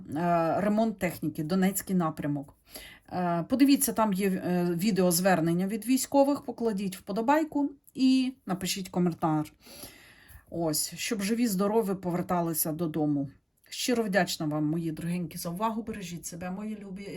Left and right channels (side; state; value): both; identical; correlation 1.00